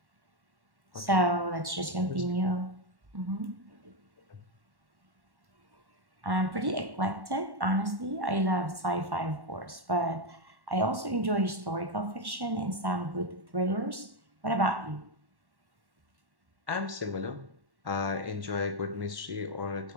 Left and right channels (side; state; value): left; late; 1.1 ms